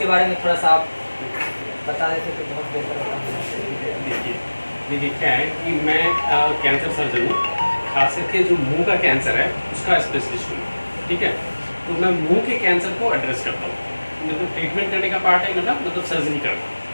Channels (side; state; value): both; inverted; correlation -1.00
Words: बारे में थोड़ा सा आप बता देते तो बहुत बेहतर होता। देखिए क्या है कि मैं कैंसर सर्जन हूँ, खास करके जो मुंह का कैंसर है उसका स्पेशलिस्ट हूँ। ठीक है, तो मैं मुंह के कैंसर को एड्रेस करता हूँ। मतलब ट्रीटमेंट करने का पार्ट है, मतलब सर्जरी करना।